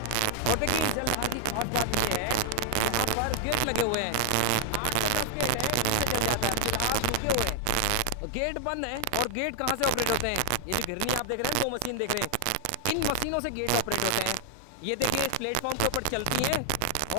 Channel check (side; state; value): both; different; correlation 0.00